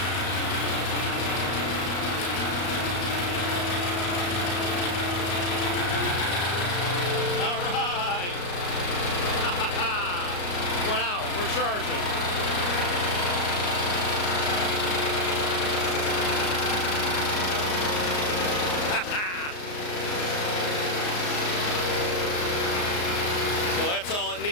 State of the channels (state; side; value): late; right; 34 ms